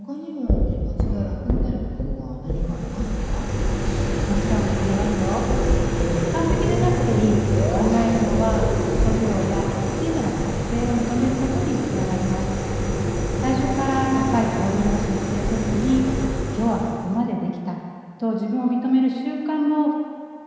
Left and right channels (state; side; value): identical; both; correlation 1.00